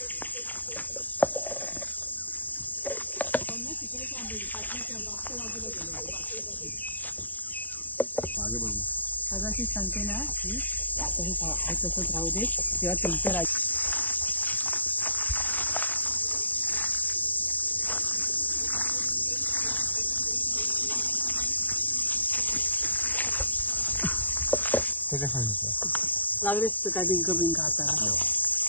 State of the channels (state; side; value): late; right; 0.077 ms